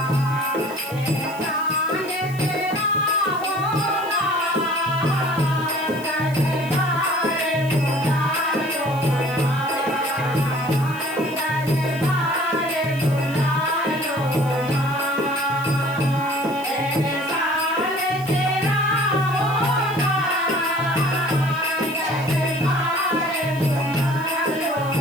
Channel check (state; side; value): noise; right; hiss, 19 dB below the sound